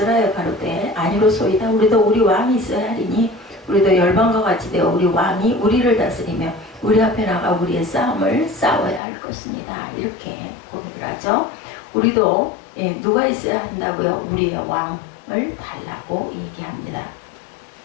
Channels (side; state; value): right; drops out; at 9.0 s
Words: 가로되 아니로소이다. 우리도 우리 왕이 있어야 하리니 우리도 열방과 같이 되어 우리 왕이 우리를 다스리며 우리 앞에 나가 우리의 싸움을 싸워야 할 것입니다. 이렇게 고백을 하죠. 우리도 누가 있어야 한다고요? 우리의 왕을 달라고 얘기합니다.